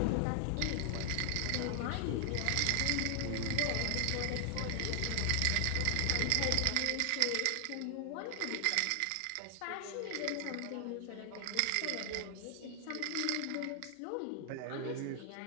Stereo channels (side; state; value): both; different; correlation 0.00